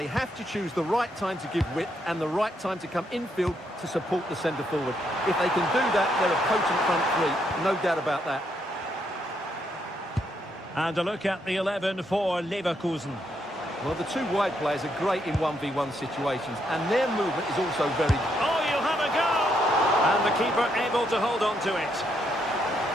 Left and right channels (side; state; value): both; normal; correlation 0.76